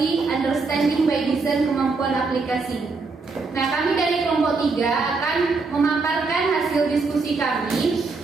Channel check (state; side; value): quieter; left; 4.1 dB